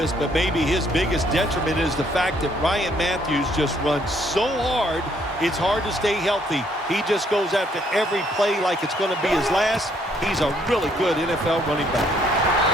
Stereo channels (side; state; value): both; normal; correlation 0.67